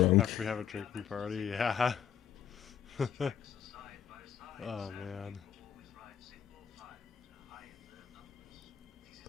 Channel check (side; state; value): right; quieter; 9.0 dB